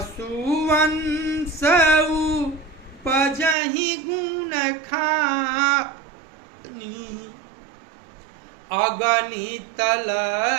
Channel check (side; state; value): left; drops out; at 3.6 s